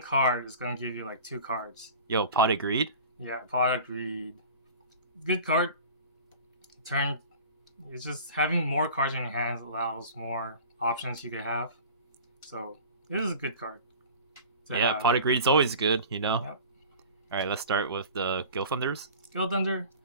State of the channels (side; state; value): both; inverted; correlation -0.40